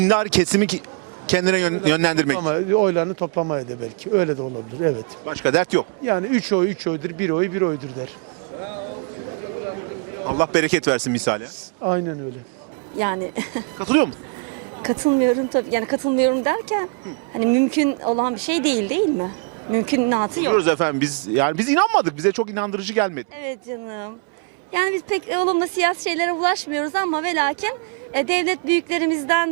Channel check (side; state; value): left; quieter; 35.1 dB